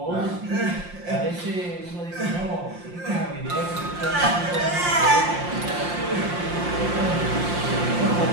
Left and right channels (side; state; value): left; late; 5.7 ms